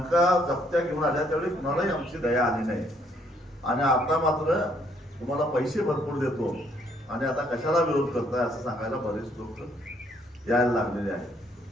जप्त्या घेऊन आल्या, त्यावेळी कुणालाही आमची दया आली नाही. आणि आता मात्र तुम्हाला पैसे भरपूर देतो आणि आता कशाला विरोध करताय असं सांगायला बरेच लोक यायला लागलेले आहेत.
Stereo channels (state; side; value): normal; both; correlation 0.68